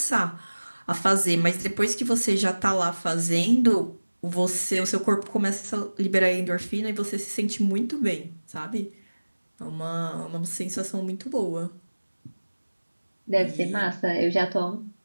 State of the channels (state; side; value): inverted; both; correlation -1.00